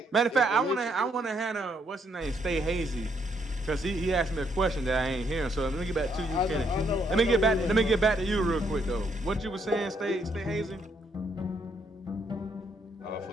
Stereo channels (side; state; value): both; normal; correlation 0.73